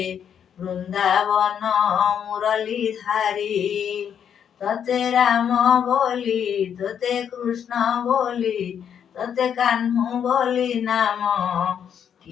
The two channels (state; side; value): quieter; right; 8.4 dB